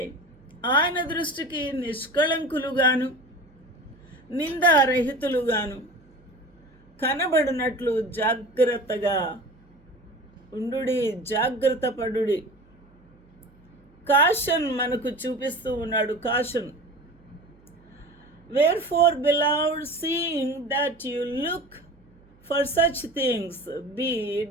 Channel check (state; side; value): noise; right; hum, 29 dB below the sound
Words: ఆయన దృష్టికి నిష్కళంకులుగాను, నిందారహితులుగాను కనబడినట్లు జాగ్రత్తగా ఉండుడి, జాగ్రత్త పడుడి. కాషన్ మనకు చూపిస్తూ ఉన్నాడు. Caution, wherefore beloved, seeing that you look for such things, be